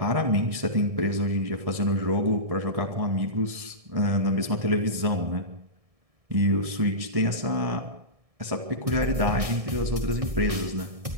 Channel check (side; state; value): left; late; 1.7 ms